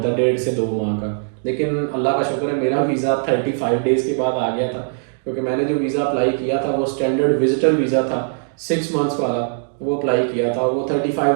है, 1.5 से 2 माह का। लेकिन अल्लाह का शुक्र है मेरा वीज़ा 35 डेज़ के बाद आ गया था, क्योंकि मैंने जो वीज़ा अप्लाई किया था वो स्टैंडर्ड विजिटर वीज़ा था 6 मंथ्स वाला, वो अप्लाई किया था। वो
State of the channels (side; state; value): left; silent; digital silence